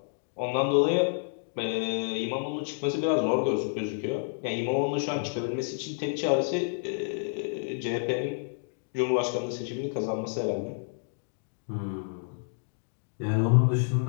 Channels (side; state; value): right; silent; digital silence